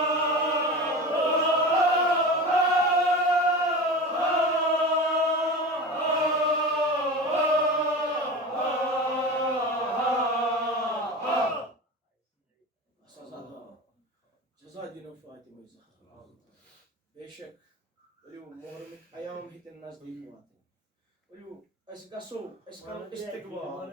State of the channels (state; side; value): normal; both; correlation 0.30